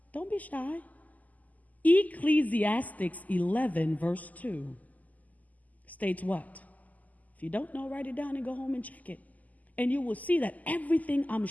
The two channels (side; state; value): right; late; 0.078 ms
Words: Don't be shy. Ecclesiastes 11 verse 2 states what? If you don't know, write it down and go home and check it. And you will see that everything I'm